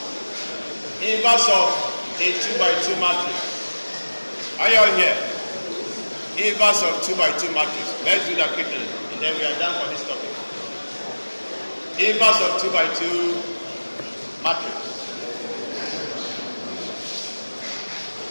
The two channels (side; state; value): both; inverted; correlation -1.00